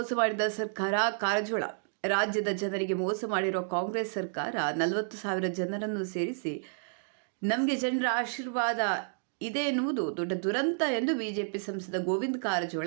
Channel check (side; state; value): left; silent; digital silence